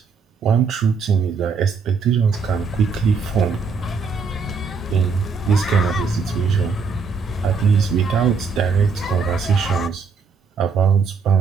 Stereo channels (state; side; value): quieter; left; 5.0 dB